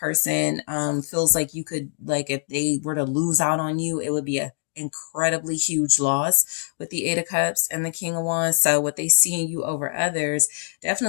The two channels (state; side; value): silent; right; digital silence